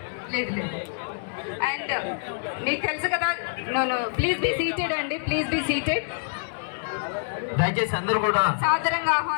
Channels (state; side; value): silent; right; digital silence